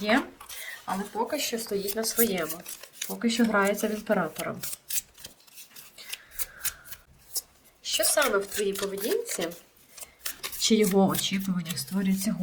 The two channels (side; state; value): both; identical; correlation 1.00